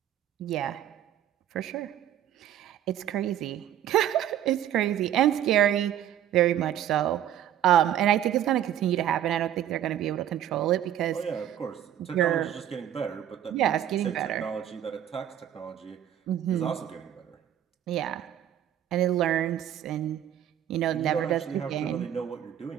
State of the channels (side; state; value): left; quieter; 10.9 dB